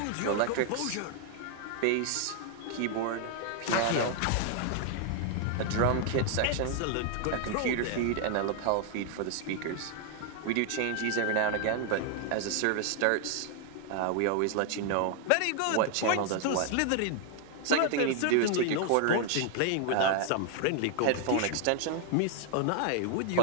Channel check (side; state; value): both; different; correlation 0.00